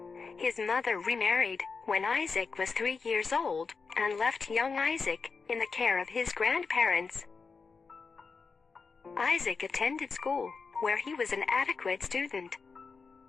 His mother remarried when Isaac was 3 years old and left young Isaac in the care of his grandparents. Isaac attended school, where he was an adequate student.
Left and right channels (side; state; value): right; quieter; 4.9 dB